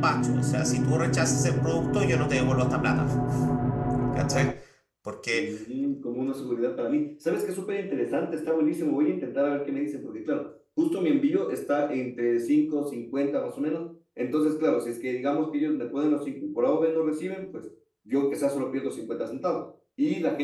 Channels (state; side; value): identical; both; correlation 1.00